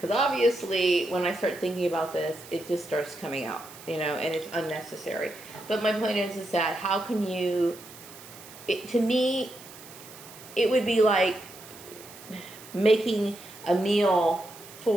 obviously, when I start thinking about this, it just starts coming out, and it's unnecessary. But my point is that how can you, to me, it would be like making a meal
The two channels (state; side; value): noise; right; hiss, 18 dB below the sound